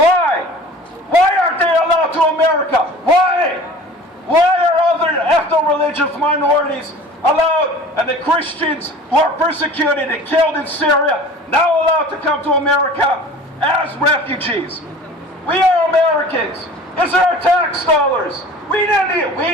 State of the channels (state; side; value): normal; both; correlation 0.43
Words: Why aren't they allowed to America? Why? Why are other ethno-religious minorities allowed, and the Christians who are persecuted and killed in Syria now allowed to come to America as refugees? We are Americans. These are our tax dollars. We